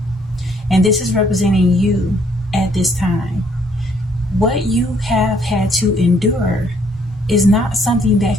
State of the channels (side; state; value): both; normal; correlation 0.66